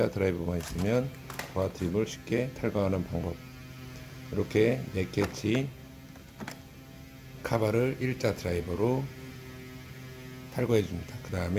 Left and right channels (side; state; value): both; identical; correlation 1.00